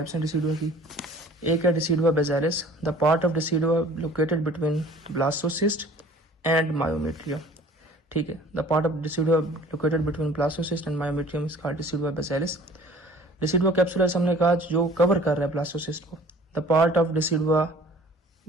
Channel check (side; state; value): both; normal; correlation 0.49